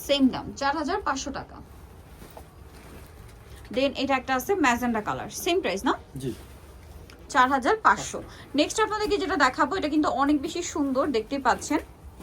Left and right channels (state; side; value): identical; both; correlation 1.00